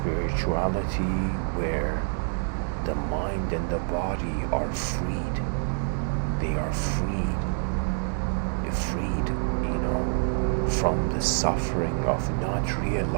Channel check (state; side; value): silent; left; 60 dB below the other